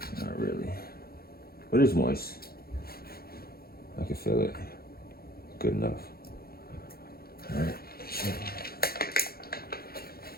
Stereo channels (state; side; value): late; right; 0.44 ms